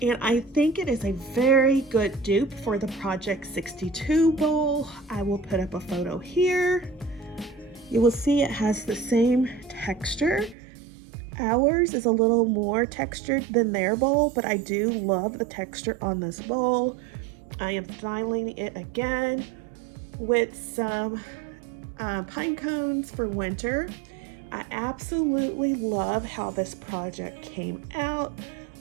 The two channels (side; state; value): left; drops out; at 10.6 s